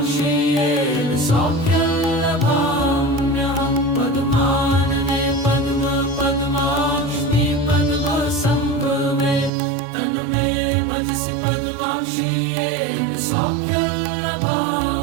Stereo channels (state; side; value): drops out; left; at 9.5 s